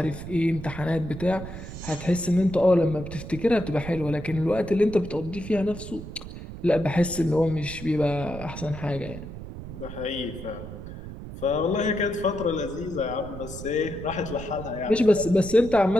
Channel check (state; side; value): noise; right; rumble, 11 dB below the sound